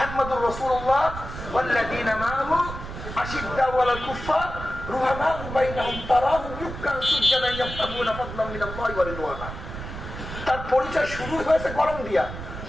রাসূলুল্লাহ ওয়াল্লাযীনা মাআহু আশিদ্দাউ আলাল কুফার রুহামাউ বাইনাহুম তারাহুম রুকআন সুজদান ইয়াবতাগুনা ফাদলান মিনাল্লাহি ওয়া রিদওয়ানা। তার পরিচয় শুরু হয়েছে গরম দিয়া,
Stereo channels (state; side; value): noise; right; rumble, 9 dB below the sound